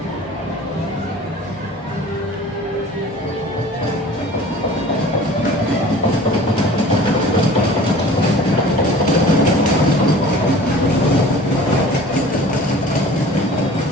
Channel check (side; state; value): both; normal; correlation 0.44